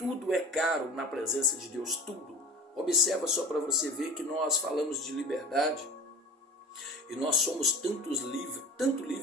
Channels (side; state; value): both; normal; correlation 0.37